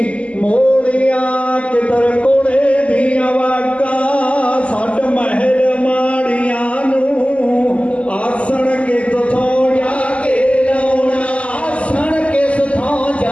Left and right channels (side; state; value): right; late; 0.062 ms